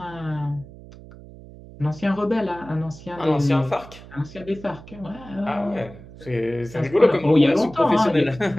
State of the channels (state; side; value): noise; right; hum, 18 dB below the sound